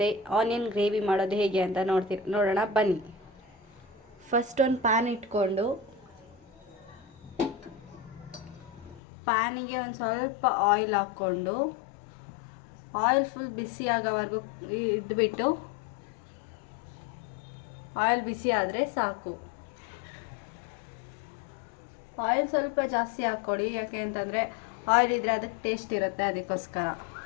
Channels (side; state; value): right; drops out; at 9.0 s